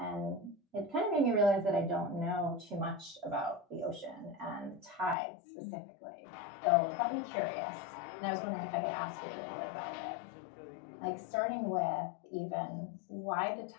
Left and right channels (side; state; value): right; drops out; at 5.2 s